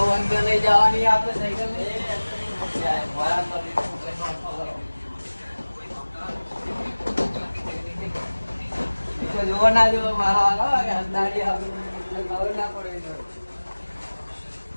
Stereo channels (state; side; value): inverted; both; correlation -1.00